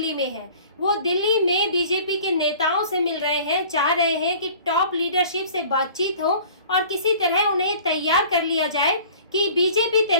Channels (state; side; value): inverted; both; correlation -0.47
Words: में हैं। वो दिल्ली में बीजेपी के नेताओं से मिल रहे हैं, चाह रहे हैं कि टॉप लीडरशिप से बातचीत हो और किसी तरह उन्हें तैयार कर लिया जाए कि बीजेपी